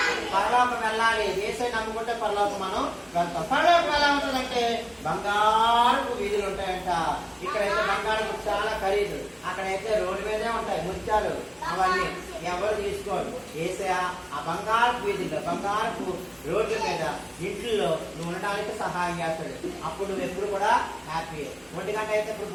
పరలోకం వెళ్ళాలి. యేసయ్య నమ్ముకుంటే పరలోకం మనం వెళ్తాం. పరలోకం ఎలా ఉంటుందంటే బంగారపు వీధులు ఉంటాయంట. ఇక్కడైతే బంగారపు చాలా ఖరీదు, అక్కడైతే రోడ్డు మీదే ఉంటాయి ముత్యాలు. అవన్నీ ఎవరు తీసుకోరు. యేసయ్య ఆ బంగారపు వీధుల్లో, బంగారపు రోడ్ల మీద, ఇంట్లో నువ్వు ఉండడానికి సహాయం చేస్తాడు. అప్పుడు నువ్వు ఎప్పుడు కూడా హ్యాపీ. 1 గంట అయితే ఇప్పుడు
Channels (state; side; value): identical; both; correlation 1.00